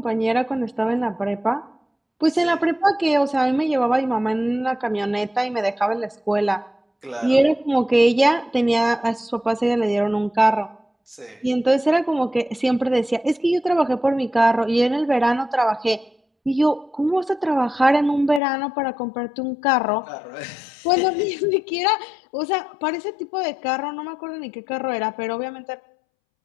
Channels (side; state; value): right; drops out; at 18.4 s